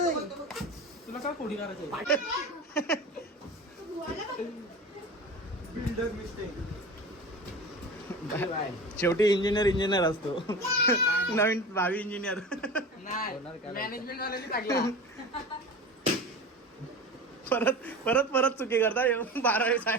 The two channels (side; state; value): both; normal; correlation 0.32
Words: तुला काय कोडी करायचं. Builder mistake. शेवटी इंजिनियर असतो. नवीन भावी इंजिनियर. मॅनेजमेंट वाल्यांनी टाकला. परत परत परत चुकी करता. 12वी